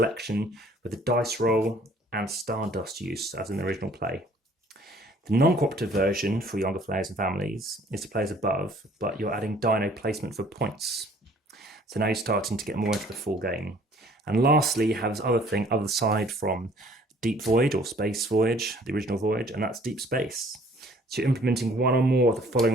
with the dice roll and stardust use, as in the original play. The non-cooperative version for younger players and families is to play as above, but you're adding dino placement for points. So now you're starting to get more into the full game. And lastly, you have this other thing, other side from Deep Void or Space Voyage, the original Voyage, and that's Deep Space. So you're implementing one or more of the following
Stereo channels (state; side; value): normal; both; correlation 0.57